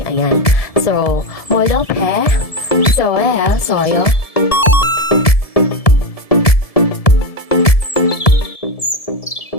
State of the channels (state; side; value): late; right; 1.7 ms